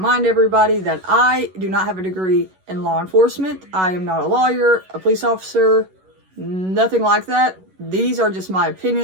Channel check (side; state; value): left; late; 11 ms